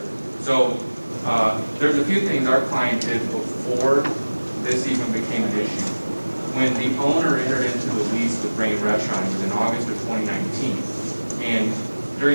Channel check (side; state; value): both; inverted; correlation -1.00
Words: So there's a few things our client did before this even became an issue. When the owner entered into the lease with Rain Restaurant, it was in August of 2019, and